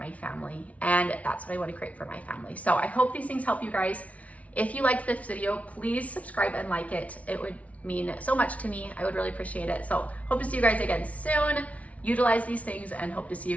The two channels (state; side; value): late; right; 0.067 ms